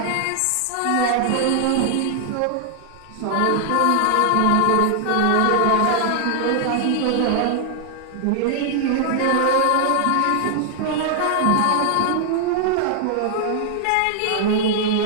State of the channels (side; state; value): both; different; correlation 0.00